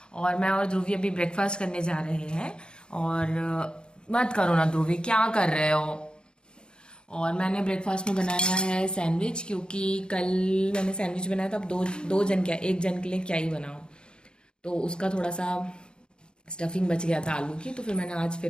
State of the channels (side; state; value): right; late; 0.050 ms